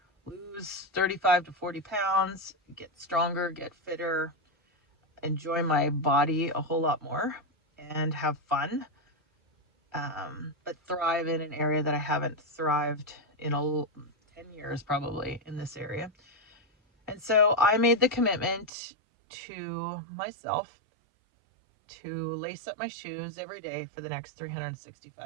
lose 35 to 40 pounds, get stronger, get fitter, enjoy my body a whole lot more, and have fun, but thrive in an area that I haven't thrived in 10 years probably in this area. And so I made the commitment to myself to lace up my shoes every day for the next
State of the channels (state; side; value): drops out; left; at 18.7 s